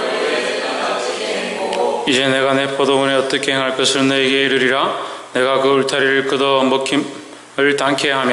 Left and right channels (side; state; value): both; identical; correlation 1.00